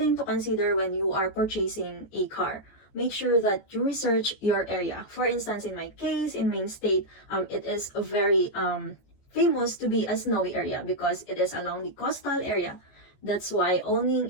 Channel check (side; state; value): right; late; 14 ms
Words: to consider when you are purchasing a car. Make sure that you research your area. For instance, in my case, in Main State, it is a very famous to be a snowy area because it is along the coastal area. That's why owning